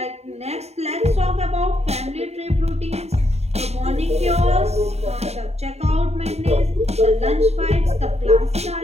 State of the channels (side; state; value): left; late; 0.31 ms